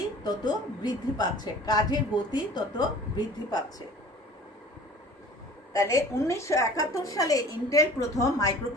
তত বৃদ্ধি পাচ্ছে, কাজের গতি তত বৃদ্ধি পাচ্ছে। তাহলে 1971 সালে ইন্টেল প্রথম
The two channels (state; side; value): normal; both; correlation 0.45